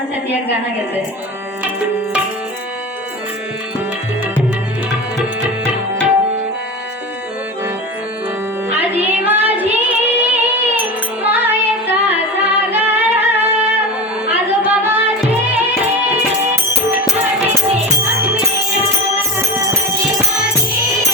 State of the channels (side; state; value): both; normal; correlation 0.26